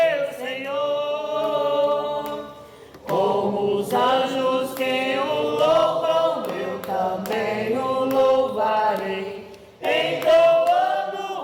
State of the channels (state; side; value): identical; both; correlation 1.00